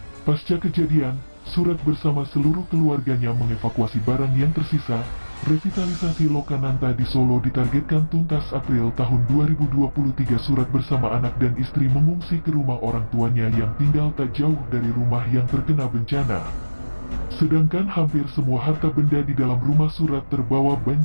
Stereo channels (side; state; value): both; inverted; correlation -1.00